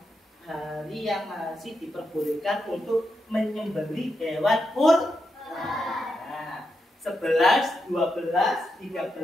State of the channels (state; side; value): normal; both; correlation 0.85